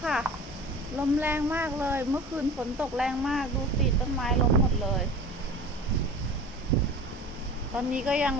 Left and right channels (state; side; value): normal; both; correlation 0.38